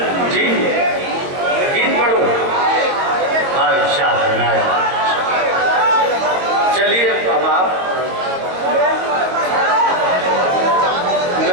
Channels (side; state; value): left; late; 22 ms